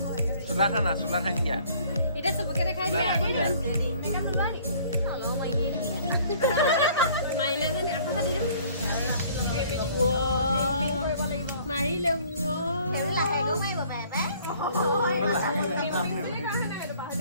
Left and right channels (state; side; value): inverted; both; correlation -0.56